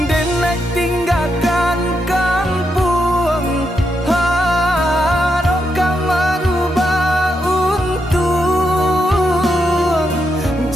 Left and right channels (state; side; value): normal; both; correlation 0.82